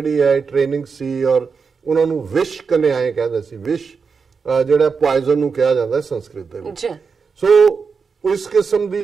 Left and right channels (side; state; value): left; quieter; 5.4 dB